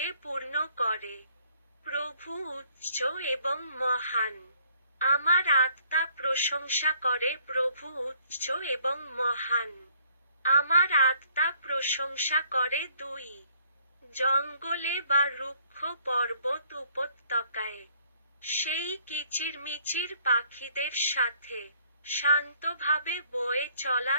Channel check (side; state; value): both; inverted; correlation -0.63